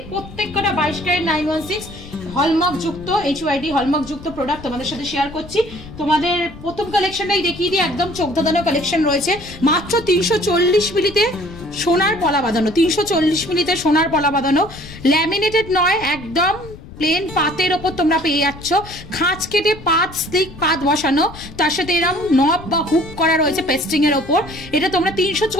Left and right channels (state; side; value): noise; left; rumble, 16 dB below the sound